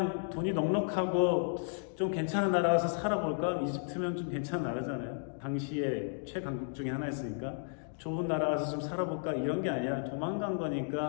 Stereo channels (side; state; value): right; silent; digital silence